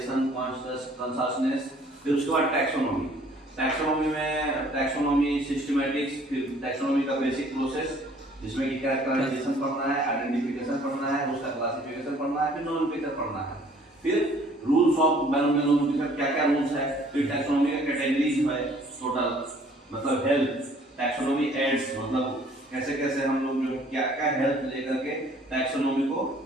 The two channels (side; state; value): both; normal; correlation 0.57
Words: consciousness. फिर उसके बाद टैक्सोनॉमी। टैक्सोनॉमी में टैक्सोनॉमी सिस्टमैटिक्स, फिर टैक्सोनॉमी का बेसिक प्रोसेस जिसमें कि कैरेक्टराइजेशन पढ़ना है, आइडेंटिफिकेशन पढ़ना है, उसका क्लासिफिकेशन पढ़ना है, फिर नोमेनक्लेचर पढ़ना है, फिर रूल्स ऑफ नोमेनक्लेचर क्या क्या रूल्स है, फिर टैक्सोनॉमी का कैटेगरीज है टोटल, मतलब हेल्थ टैक्सोनॉमी एड्स, मतलब कैसे कैसे हम लोग जो क्या क्या हेल्थ लेकर के टैक्सोनॉमी को